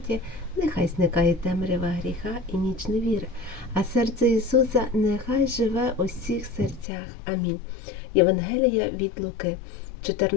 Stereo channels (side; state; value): right; drops out; at 6.9 s